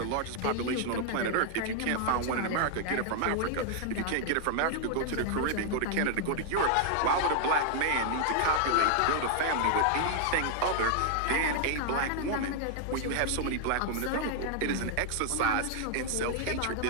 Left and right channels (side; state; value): both; different; correlation 0.00